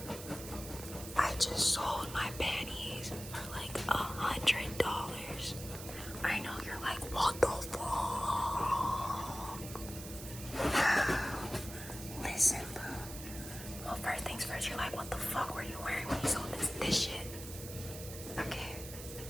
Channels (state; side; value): noise; right; hiss, 11 dB below the sound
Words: I just sold my panties for like $100. I know you're like, what the fuck? Listen, boo. Well, first things first, you're like, what the fuck were you wearing when you sold this shit? Okay.